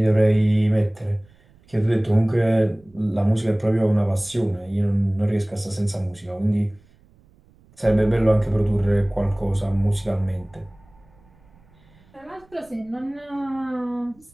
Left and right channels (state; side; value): noise; right; rumble, 30 dB below the sound